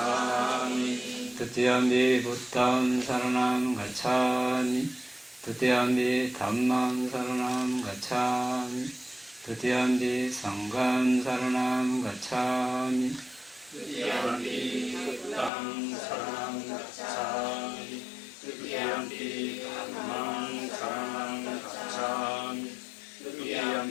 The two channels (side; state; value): right; drops out; at 15.5 s